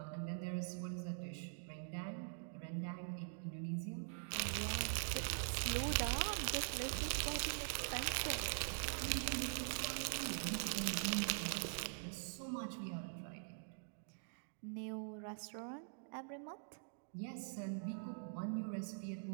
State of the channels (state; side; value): silent; left; digital silence